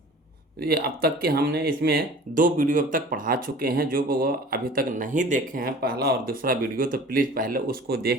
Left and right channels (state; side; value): normal; both; correlation 0.44